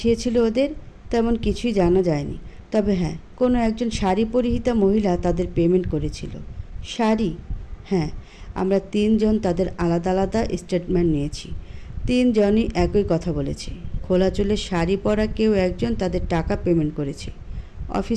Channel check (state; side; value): identical; both; correlation 1.00